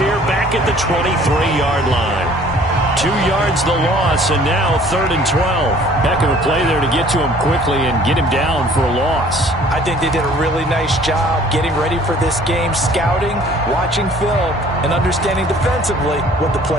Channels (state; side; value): normal; both; correlation 0.54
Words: back at the 23-yard line. 2 yards the loss, and now 3rd and 12. Heck of a play there to get to him quickly and get him down for a loss. I think they did a really nice job getting ready for this game, scouting, watching film, and understanding defensively what the